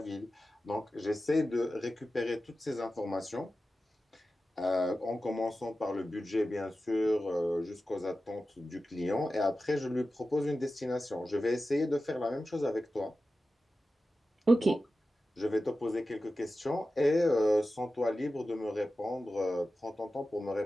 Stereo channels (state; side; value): normal; both; correlation 0.93